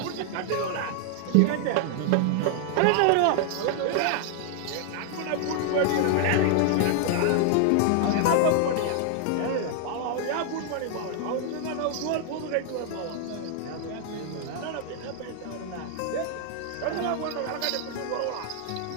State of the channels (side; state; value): both; different; correlation 0.00